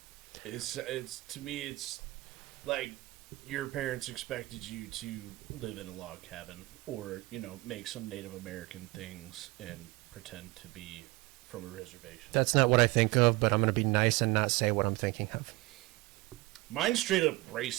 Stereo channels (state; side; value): quieter; left; 21.2 dB